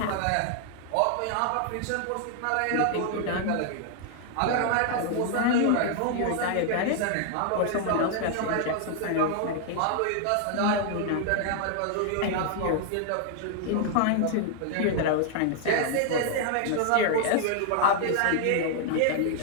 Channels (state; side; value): different; both; correlation 0.00